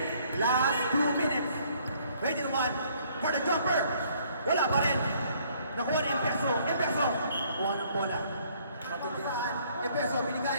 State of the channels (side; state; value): both; inverted; correlation -0.63